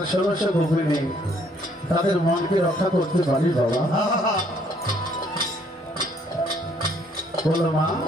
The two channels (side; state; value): both; normal; correlation 0.65